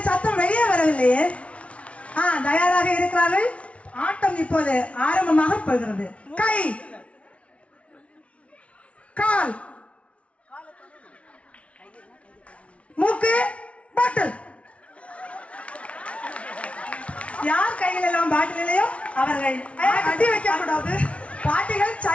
சத்தம் வெளியே வரவில்லையே. தயாராக இருக்கிறார்கள். ஆட்டம் இப்போது ஆரம்பமாக போகிறது. கை, கால், மூக்கு, பாட்டில். யார் கையில் எல்லாம் பாட்டில் இல்லையோ அவர்கள் அடி வைக்க கூடாது. பாட்டிகள்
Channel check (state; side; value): late; right; 0.063 ms